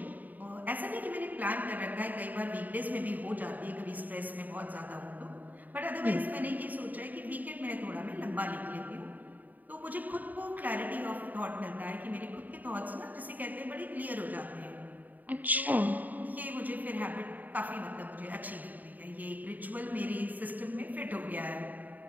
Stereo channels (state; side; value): late; left; 0.082 ms